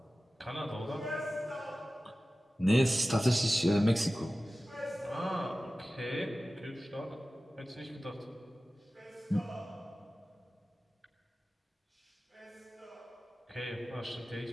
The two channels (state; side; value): normal; both; correlation 0.96